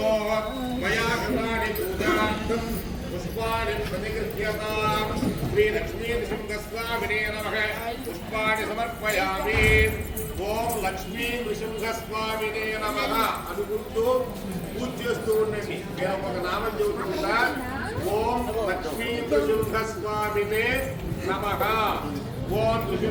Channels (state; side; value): identical; both; correlation 1.00